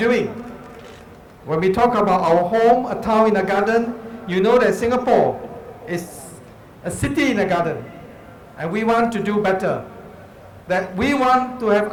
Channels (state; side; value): identical; both; correlation 1.00